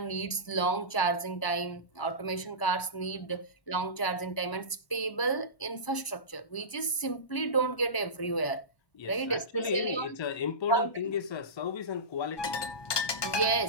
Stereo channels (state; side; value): late; right; 1.0 ms